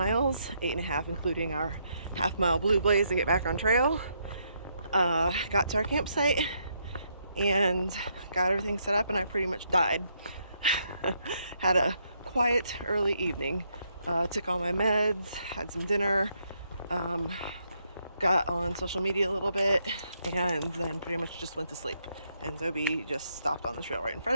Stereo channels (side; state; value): both; inverted; correlation -0.76